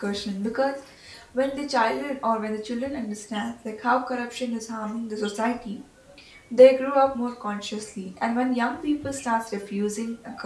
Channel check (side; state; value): both; identical; correlation 1.00